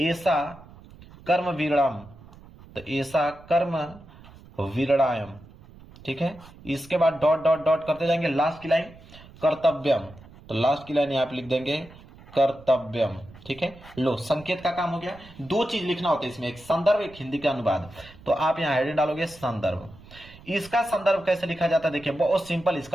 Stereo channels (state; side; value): noise; right; rumble, 21 dB below the sound